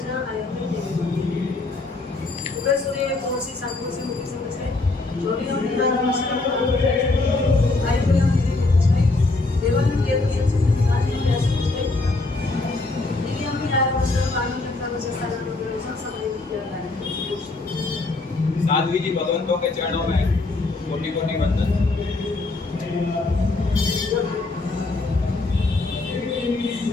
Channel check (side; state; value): right; quieter; 3.3 dB